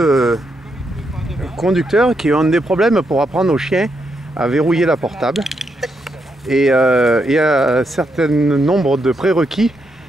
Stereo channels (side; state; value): both; normal; correlation 0.81